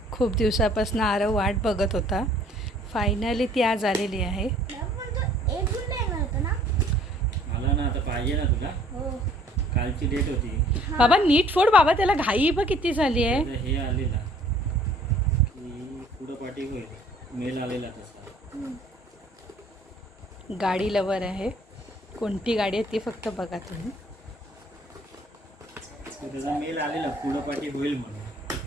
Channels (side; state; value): both; normal; correlation 0.57